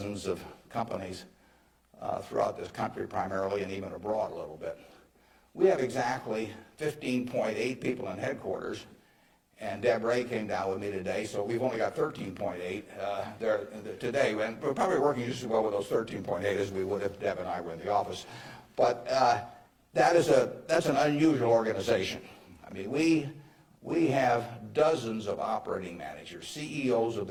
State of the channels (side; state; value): both; identical; correlation 1.00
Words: of companies throughout this country primarily, and even abroad a little bit. We have exactly 15.8 people in headquarters, and Deb Ray came down with me today, so we've only got 13.8 there today, and we're probably working just as well with those 13.8 as we would if Deb and I were in the office. But that's an unusual organization. I mean, we have dozens of operating managers, CEOs of